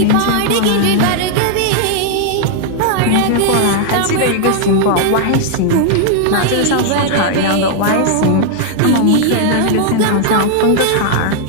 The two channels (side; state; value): both; different; correlation 0.00